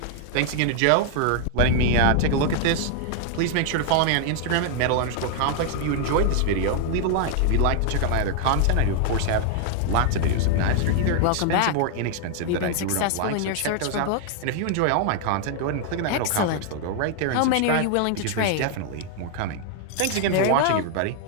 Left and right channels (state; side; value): different; both; correlation 0.00